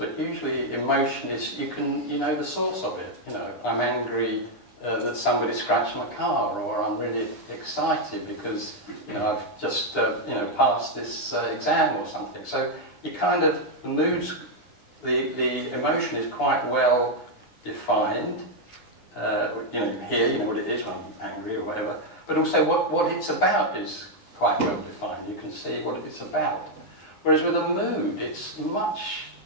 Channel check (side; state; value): right; late; 9.8 ms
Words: usually emotion is, you know the source of it. I'm angry that somebody scratched my car, or I'm really excited because I've just passed this exam or something. So you kind of, the moods, the emotion is quite well defined. Here, you know what it is when I'm angry or whatever. But also what it's about is quite well defined. You can see what it's about. Whereas with a mood, it's much